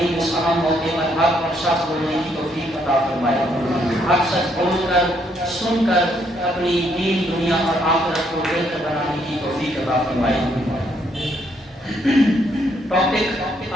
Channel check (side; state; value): both; normal; correlation 0.71